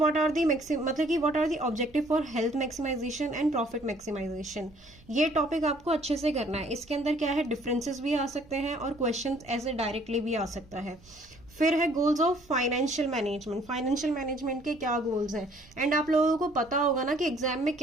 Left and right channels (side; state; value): right; noise; rumble, 26 dB below the sound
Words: are the objective for health maximization and profit maximization. ये टॉपिक आपको अच्छे से करना है। इसके अंदर क्या है, डिफरेंसेस भी आ सकते हैं और क्वेश्चन ऐसे डायरेक्टली भी आ सकता है। फिर है goals of financial management. Financial management के क्या गोल्स हैं, एंड आप लोगों को पता होगा ना कि एग्जाम में